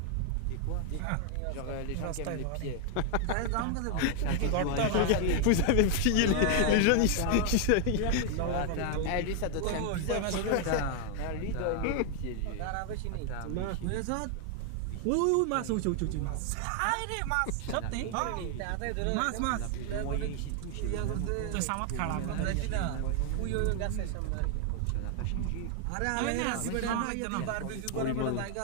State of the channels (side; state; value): both; different; correlation 0.00